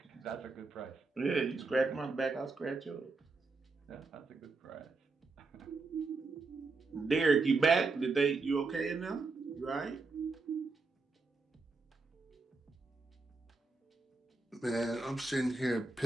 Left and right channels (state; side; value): quieter; left; 3.8 dB